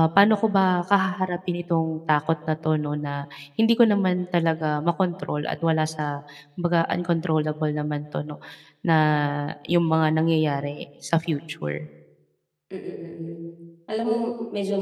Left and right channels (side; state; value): both; identical; correlation 1.00